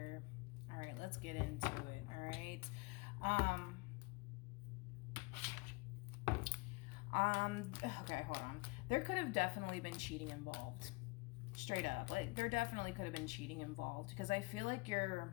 All right, let's get into it, all right? Okay, hold on. There could have definitely been cheating involved. Straight up. Like, there definitely could have been cheating involved, because I feel like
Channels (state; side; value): quieter; right; 26.5 dB